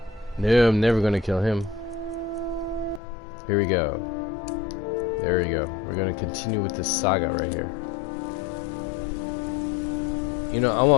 No, I'm never gonna kill him. Here we go. There we go. We're gonna continue with this saga right here. You know, I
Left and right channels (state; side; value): drops out; right; at 3.0 s